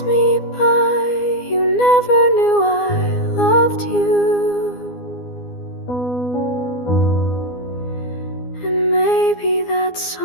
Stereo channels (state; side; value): late; right; 12 ms